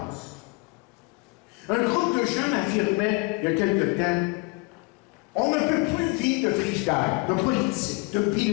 Un groupe de jeunes affirmait, il y a quelque temps, on ne peut plus vivre de frigidaire, de politique, de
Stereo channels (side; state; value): right; quieter; 27.8 dB